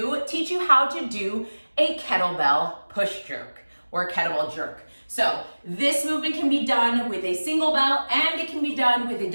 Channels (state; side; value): inverted; both; correlation -1.00